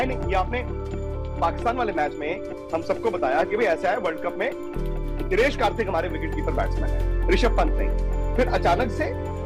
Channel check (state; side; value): identical; both; correlation 1.00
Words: नहीं, ये आपने पाकिस्तान वाले मैच में हम सबको बताया कि भाई ऐसा है, वर्ल्ड कप में दिनेश कार्तिक हमारे विकेट कीपर बैट्समैन है, ऋषभ पंत नहीं। फिर अचानक से